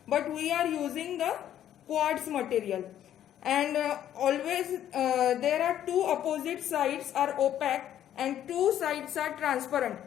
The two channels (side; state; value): right; quieter; 11.1 dB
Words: But we are using the quartz material. And always there are two opposite sides are opaque and two sides are transparent.